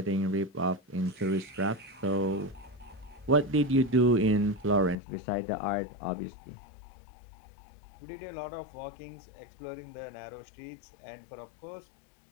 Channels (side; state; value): right; drops out; at 5.0 s